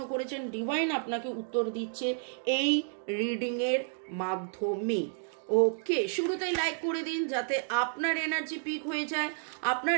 করেছেন, ডিভাইন আপনাকে উত্তর দিচ্ছে এই রিডিংয়ের মাধ্যমে। ওকে, শুরুতেই লাইক করে দিন যাতে আপনার এনার্জি পিক হয়ে যায়,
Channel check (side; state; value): left; silent; digital silence